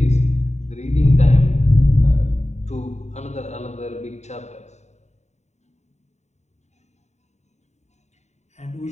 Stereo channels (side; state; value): right; late; 0.33 ms